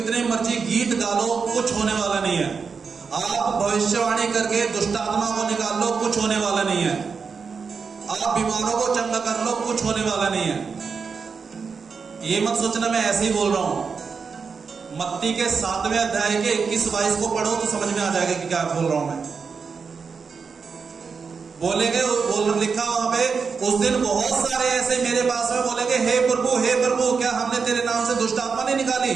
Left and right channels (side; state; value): left; quieter; 5.4 dB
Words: मर्जी गीत गा लो, कुछ होने वाला नहीं है। आप भविष्यवाणी करके दुष्टात्मा को निकाल लो, कुछ होने वाला नहीं है। आप बीमारों को चंगा कर लो, कुछ होने वाला नहीं है। ये मत सोचना मैं ऐसे ही बोल रहा हूं। मत्ती के 7वें अध्याय के 21-22 को पढ़ो तो समझ में आ जाएगा कि क्या बोल रहा हूं मैं। बोलेंगे, लिखा वहां पे, उस दिन बहुत सारे ऐसे मेरे पास में बोलेंगे, हे प्रभु क्या हमने तेरे नाम से दुष्टात्मा नहीं निकाली?